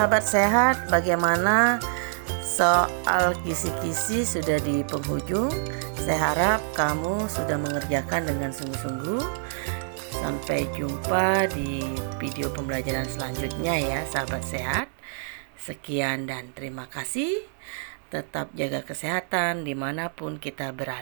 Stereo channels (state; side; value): silent; left; digital silence